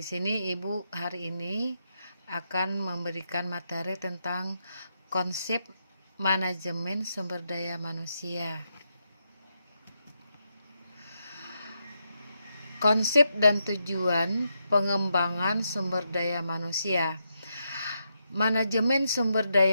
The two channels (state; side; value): inverted; both; correlation -0.83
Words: sini Ibu hari ini akan memberikan materi tentang konsep manajemen sumber daya manusia. Konsep dan tujuan pengembangan sumber daya manusia. Manajemen sumber